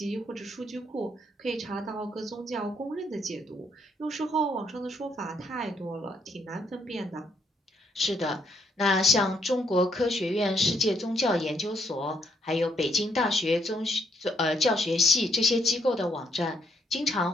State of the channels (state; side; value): normal; both; correlation 0.72